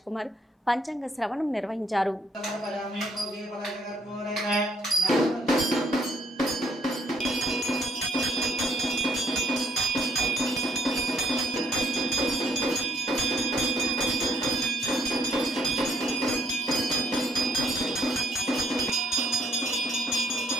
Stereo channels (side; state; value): both; normal; correlation 0.67